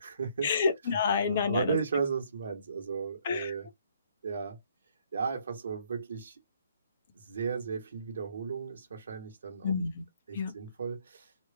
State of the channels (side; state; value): both; inverted; correlation -0.65